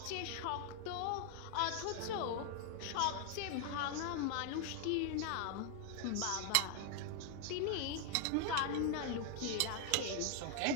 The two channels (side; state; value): both; different; correlation 0.00